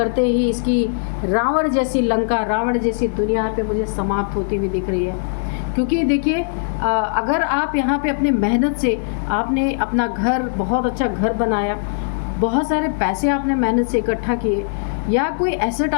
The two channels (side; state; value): right; silent; 63 dB below the other